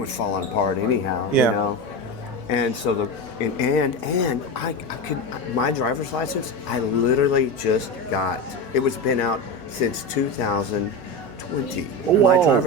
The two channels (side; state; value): both; normal; correlation 0.20